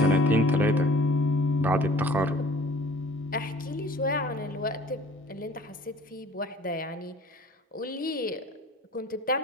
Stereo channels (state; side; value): normal; both; correlation 0.50